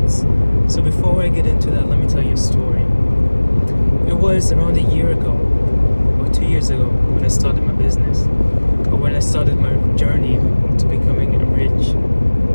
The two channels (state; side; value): inverted; both; correlation -1.00